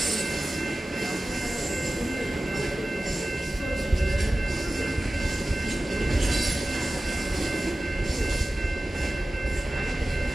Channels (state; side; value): normal; both; correlation 0.96